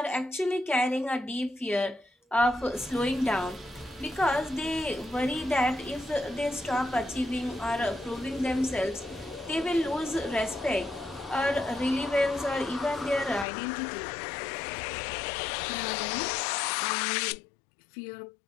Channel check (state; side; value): drops out; right; at 13.5 s